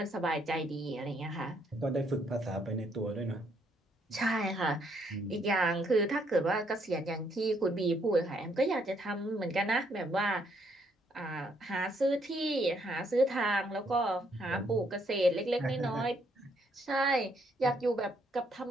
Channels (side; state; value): both; normal; correlation 0.71